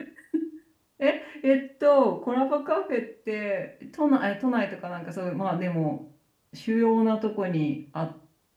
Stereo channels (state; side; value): identical; both; correlation 1.00